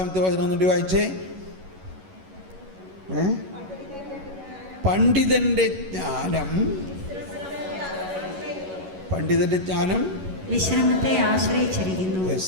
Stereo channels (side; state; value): left; late; 11 ms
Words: വചനം ഒന്നുകൂടി വായിച്ചേ. പണ്ഡിതന്റെ ജ്ഞാനം വിശ്രമത്തെ ആശ്രയിച്ചിരിക്കുന്നു.